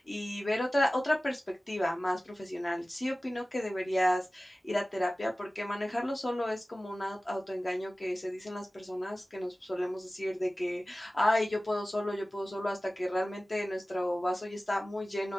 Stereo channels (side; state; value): both; normal; correlation 0.97